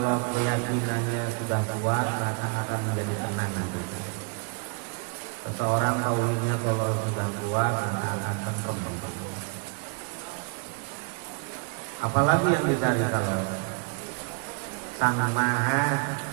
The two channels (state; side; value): quieter; left; 36.0 dB